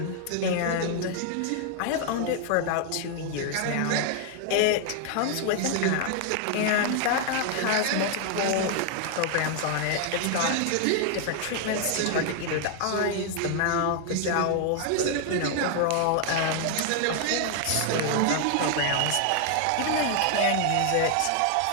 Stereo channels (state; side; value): different; both; correlation 0.00